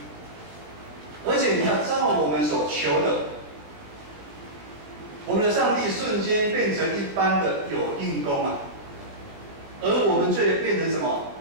而且你要照我们所求的，我们的上帝瞬间变成一般的有应功啊，而我们却变成什么？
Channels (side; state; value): left; late; 19 ms